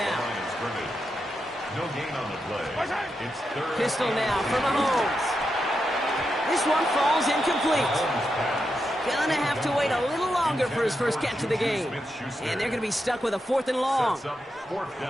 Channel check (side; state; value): both; normal; correlation 0.86